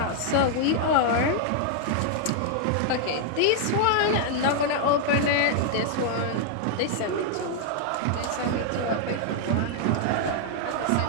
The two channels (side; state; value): both; different; correlation 0.00